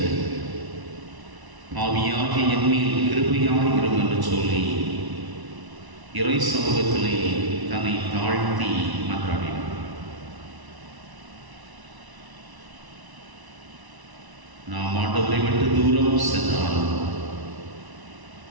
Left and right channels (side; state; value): left; late; 1.0 ms